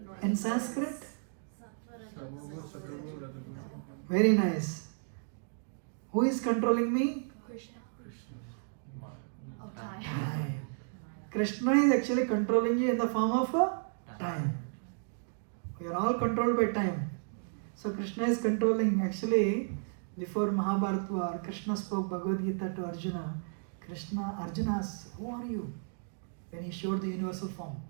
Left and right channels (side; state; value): left; silent; digital silence